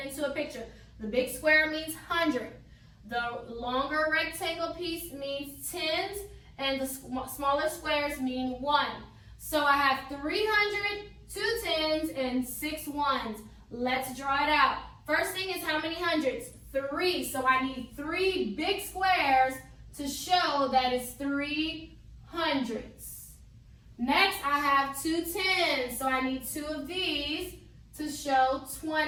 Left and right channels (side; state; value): both; identical; correlation 1.00